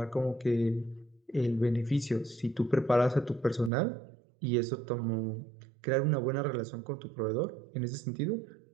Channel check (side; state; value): left; drops out; at 3.7 s